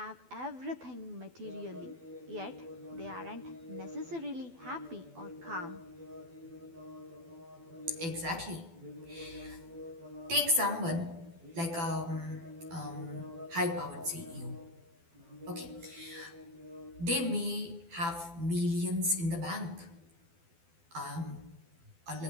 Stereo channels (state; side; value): late; left; 12 ms